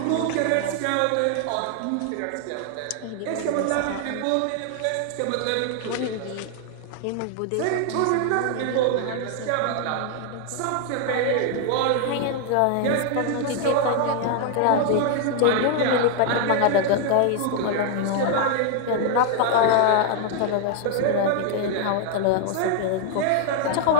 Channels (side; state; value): both; different; correlation 0.00